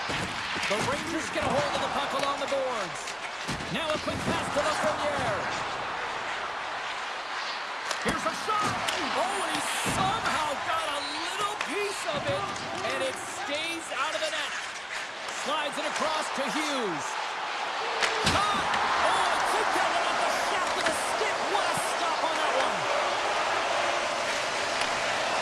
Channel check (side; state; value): both; identical; correlation 1.00